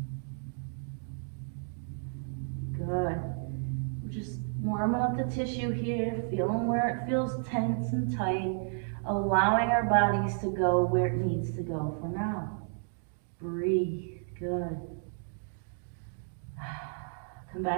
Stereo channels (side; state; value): left; silent; digital silence